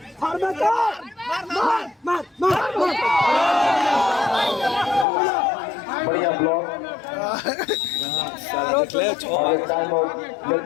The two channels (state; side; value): drops out; right; at 5.1 s